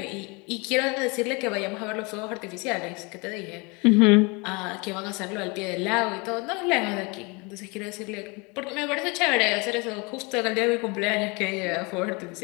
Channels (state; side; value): quieter; right; 28.8 dB